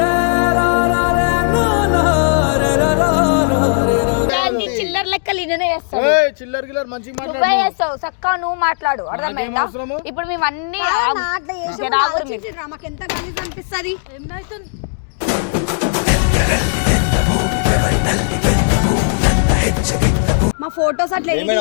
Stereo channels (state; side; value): silent; right; digital silence